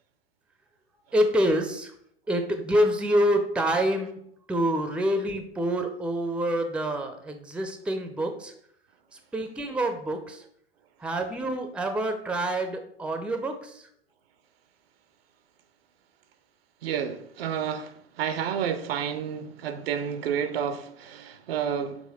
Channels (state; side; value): normal; both; correlation 0.62